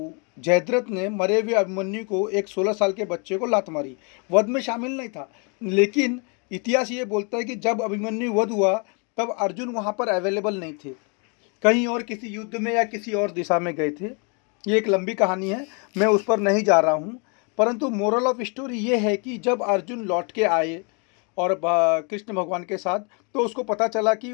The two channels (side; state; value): right; quieter; 35.1 dB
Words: जयद्रथ ने मरे हुए अभिमन्यु को एक 16 साल के बच्चे को लात मारी। वध में शामिल नहीं था, लेकिन इतिहास ये बोलता है कि जब अभिमन्यु वध हुआ तब अर्जुन वहाँ पर अवेलेबल नहीं थे, कहीं और किसी युद्ध में या किसी और दिशा में गए थे। ये एक लंबी कहानी है, मैं उस पर नहीं जा रहा हूँ। परंतु मोरल ऑफ स्टोरी ये है कि जब अर्जुन लौट के आए और कृष्ण भगवान के साथ, तो उसको पता चला कि